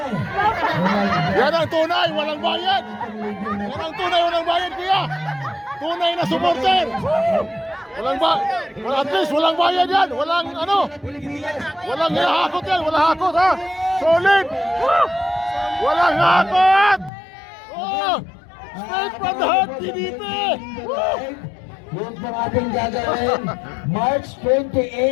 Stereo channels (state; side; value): drops out; right; at 17.1 s